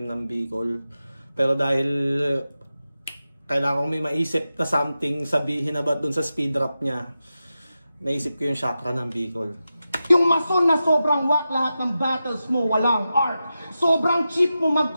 ng Bicol. Pero dahil kailangan ko may maisip na something sabihin about dun sa speed rap niya, naisip ko yung chakra ng Bicol. Yung mason na sobrang whack, lahat ng battles mo walang art. Sobrang cheap mo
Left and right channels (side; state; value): both; inverted; correlation -0.91